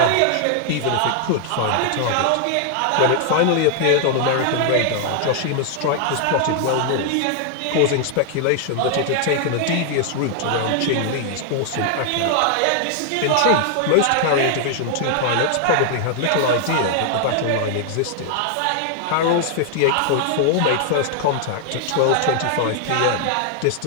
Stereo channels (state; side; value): different; both; correlation 0.00